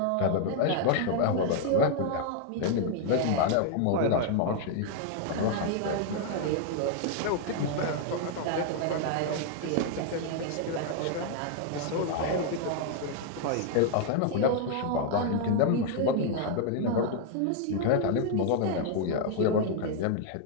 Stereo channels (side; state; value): both; different; correlation 0.00